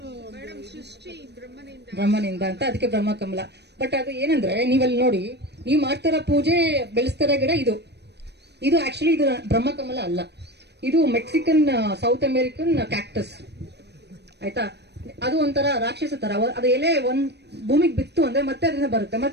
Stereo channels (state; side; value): late; left; 0.49 ms